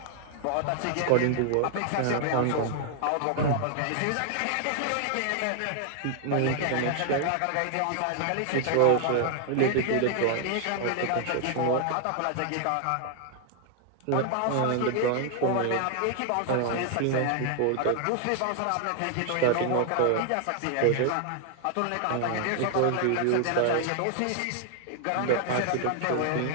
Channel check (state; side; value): different; both; correlation 0.00